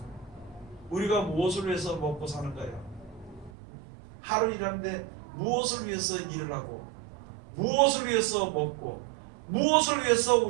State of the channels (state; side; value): drops out; left; at 3.5 s